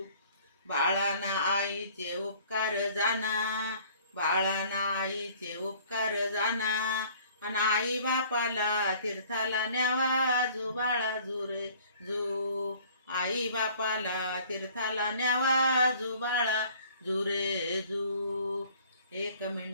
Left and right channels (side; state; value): both; inverted; correlation -0.53